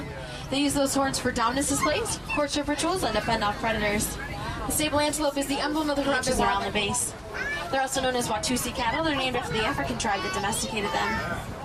They use those horns for dominance displays, courtship rituals, and to fend off predators. The sable antelope is the emblem of the ranches around the base. They're also known as Watusi cattle. They're named after the African tribe that domesticated them.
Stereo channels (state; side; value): identical; both; correlation 1.00